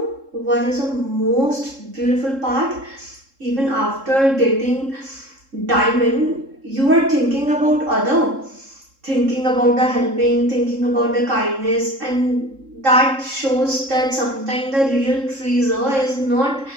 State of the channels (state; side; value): late; left; 3.7 ms